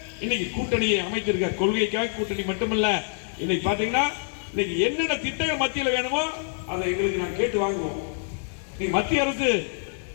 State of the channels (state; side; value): silent; right; digital silence